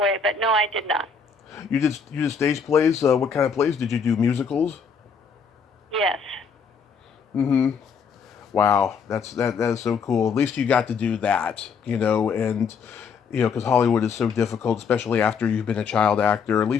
But no, I did not. you did stage plays? What kind of plays did you do? Musicals? Yes. Mm-hmm. Wow, that is so cool. At least you got to do that, and because Hollywood is so difficult, especially after you've been a child actor. At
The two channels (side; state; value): right; quieter; 5.8 dB